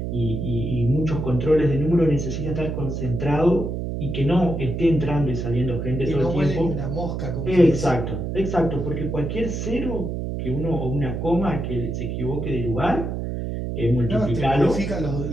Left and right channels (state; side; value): noise; right; hum, 3 dB below the sound